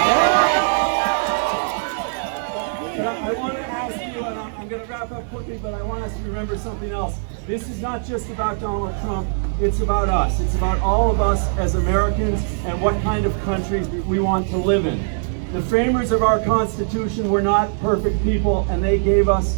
But I want to ask you, and I'm going to wrap up quickly, but I want us to remember something else. This is not just about Donald Trump, it's about us. It's about all of us as Americans and what kind of country we want to live in. The framers of our Constitution were not perfect people, and they gave us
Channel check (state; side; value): silent; left; 65 dB below the other